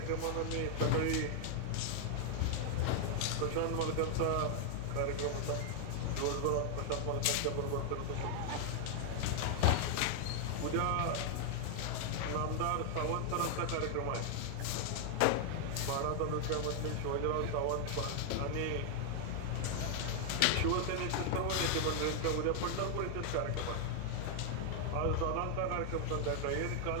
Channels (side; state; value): both; different; correlation 0.00